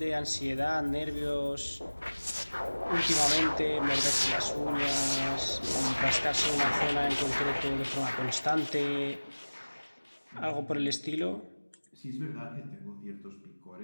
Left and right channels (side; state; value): both; inverted; correlation -1.00